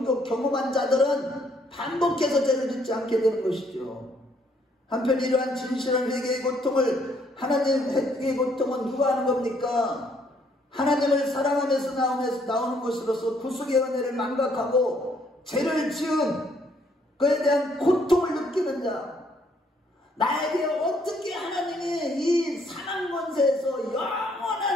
자들은 반복해서 죄를 짓지 않게 되는 것이죠. 한편 이러한 진실한 회개의 고통을, 하나님 회개의 고통은 누가 하는 겁니까? 하나님을 사랑하면서 나오는 것으로서 구속의 은혜를 망각하고 죄를 지은 그에 대한 고통을 느끼는 자, 나에게 어떻게 하나님이 이 사망 권세에서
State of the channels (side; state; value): both; normal; correlation 0.68